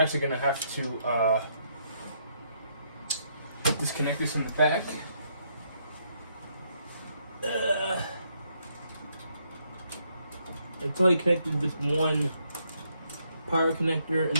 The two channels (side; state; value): both; inverted; correlation -0.73